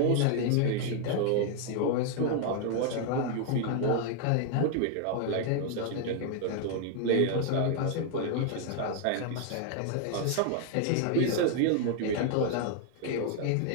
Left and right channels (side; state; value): both; different; correlation 0.00